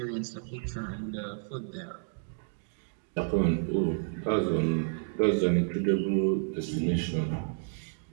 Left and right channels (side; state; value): left; silent; digital silence